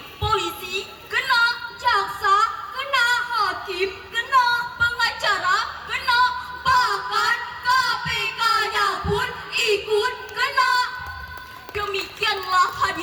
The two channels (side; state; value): both; identical; correlation 1.00